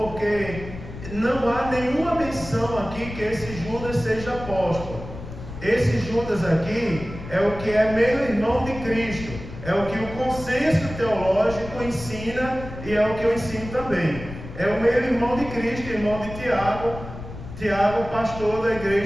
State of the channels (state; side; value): noise; left; rumble, 12 dB below the sound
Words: não há nenhuma menção aqui que esse Judas seja apóstolo. Esse Judas aqui é o que é meio-irmão de Cristo. É o que o consenso teológico ensina e é o que eu ensino também. É o meio-irmão de Cristo, irmão de Tiago, pastor da